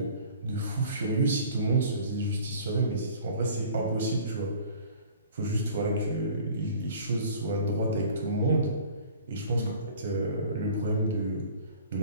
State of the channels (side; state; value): both; inverted; correlation -0.47